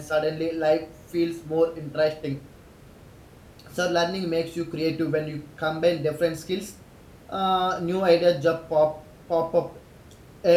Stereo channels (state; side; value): identical; both; correlation 1.00